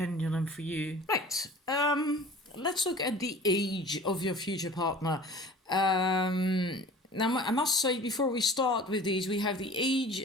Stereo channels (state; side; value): normal; both; correlation 0.43